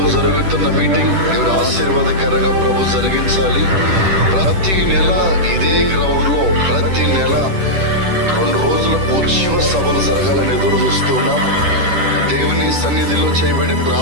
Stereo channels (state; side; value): late; left; 10 ms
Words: జరుగుతున్న మీటింగ్ దేవుడు ఆశీర్వాదకరంగా ప్రభు జరిగించాలి. ప్రతి నెల ఇదే గ్రౌండ్ లో ప్రతి నెల 2 రోజుల ఉత్సవ సభలు జరగాలని ఎదురు చూస్తున్నాం. దేవుని సన్నిధిలో చేయబడే